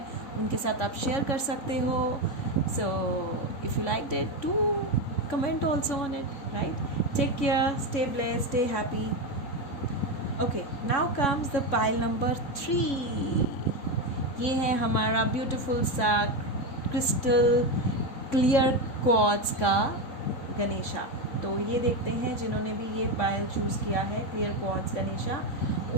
उनके साथ आप शेयर कर सकते हो. So if you like it, do comment also on it. Right, take care, stay blessed, stay happy. Okay, now comes the pile number 3. ये है हमारा ब्यूटीफुल सा क्रिस्टल क्लियर क्वार्ट्ज का गणेशा. तो ये देखते हैं जिन्होंने भी ये पायल चूज़ किया है, क्लियर क्वार्ट्ज गणेशा,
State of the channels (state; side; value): late; right; 3.6 ms